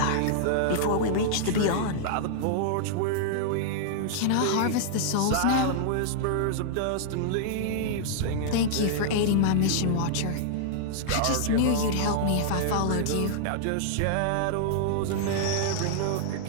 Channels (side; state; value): both; different; correlation -0.01